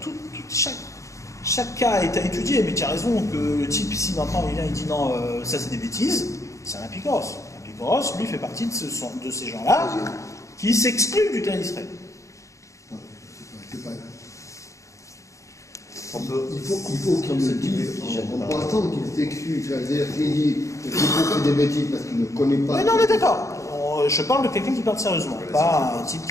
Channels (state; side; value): late; right; 0.15 ms